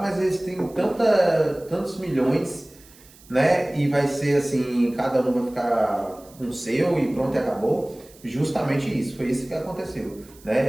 eles têm tantos milhões, né? E vai ser assim, cada um vai ficar com o seu e pronto, e acabou. Justamente isso, foi isso que aconteceu,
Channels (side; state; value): right; noise; hiss, 25 dB below the sound